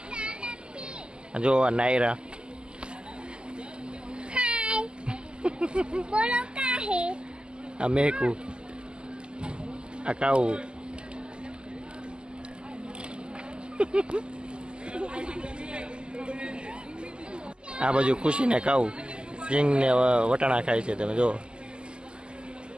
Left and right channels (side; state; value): left; late; 0.049 ms